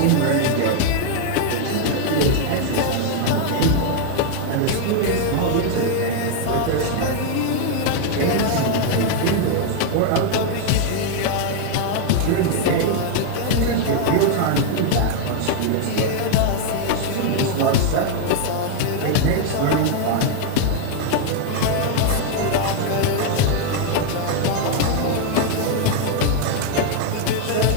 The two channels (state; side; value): different; both; correlation 0.00